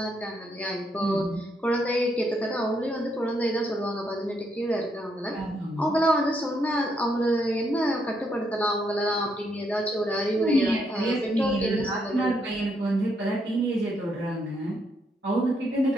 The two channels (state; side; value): normal; both; correlation 0.76